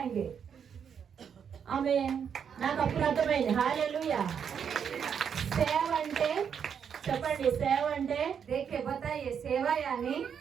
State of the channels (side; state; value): left; quieter; 7.5 dB